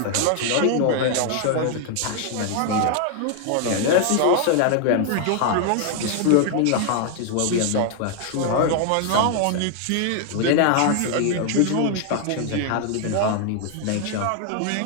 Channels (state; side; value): different; both; correlation 0.00